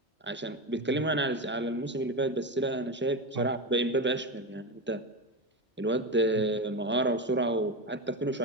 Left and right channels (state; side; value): normal; both; correlation 0.17